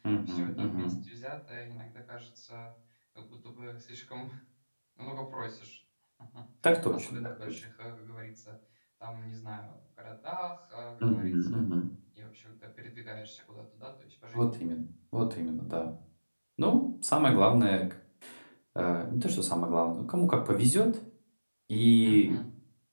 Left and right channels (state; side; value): inverted; both; correlation -1.00